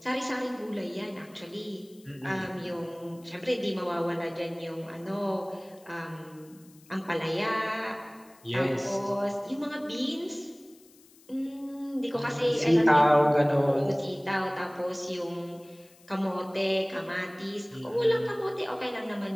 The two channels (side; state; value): left; noise; hiss, 27 dB below the sound